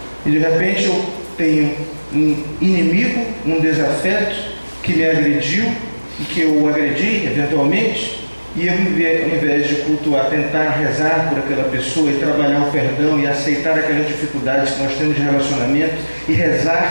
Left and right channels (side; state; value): both; inverted; correlation -1.00